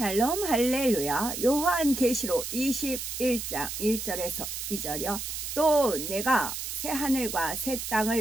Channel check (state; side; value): noise; right; hiss, 5 dB below the sound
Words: 할렐루야. 요한계시록 21장 1절에서 2절이요. 또 내가 새 하늘과 새